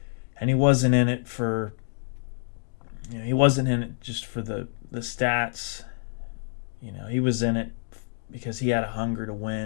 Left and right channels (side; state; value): right; silent; digital silence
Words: and he wasn't in it for he wasn't in it just for the stats. He was in it because he had a hunger to